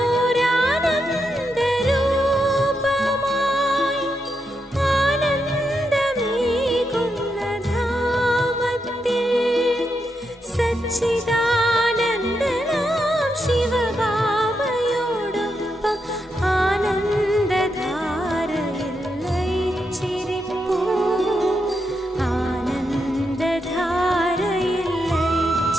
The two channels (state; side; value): normal; both; correlation 0.84